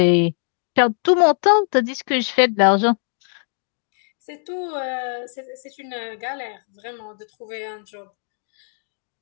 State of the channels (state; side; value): silent; right; 61 dB below the other